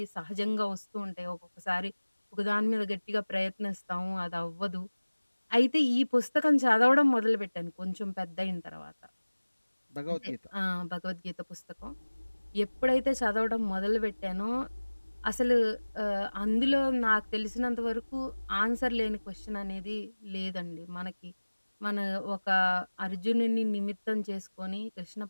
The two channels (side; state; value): both; inverted; correlation -1.00